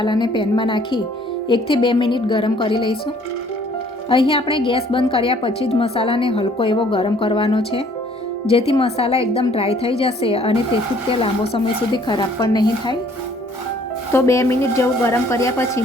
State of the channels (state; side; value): normal; both; correlation 0.59